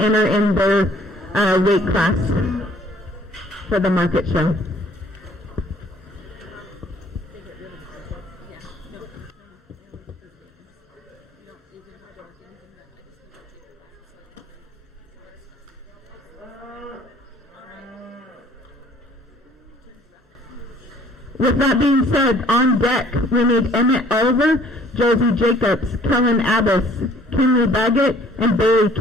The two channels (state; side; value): normal; both; correlation 0.57